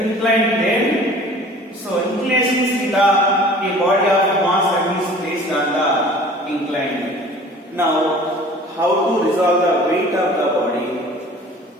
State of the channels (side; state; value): both; normal; correlation 0.47